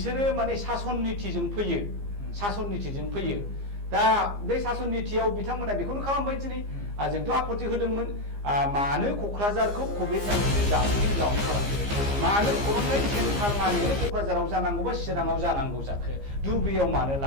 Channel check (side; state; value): left; late; 15 ms